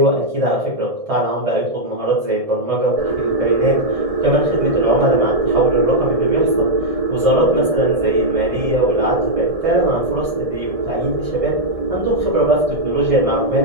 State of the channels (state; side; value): late; left; 1.7 ms